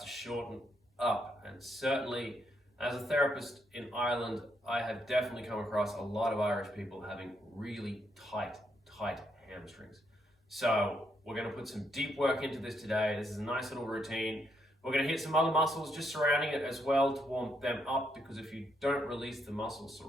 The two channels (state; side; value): normal; both; correlation 0.76